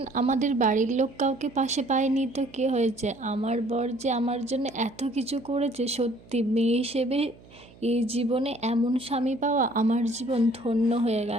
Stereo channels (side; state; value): right; noise; hum, 23 dB below the sound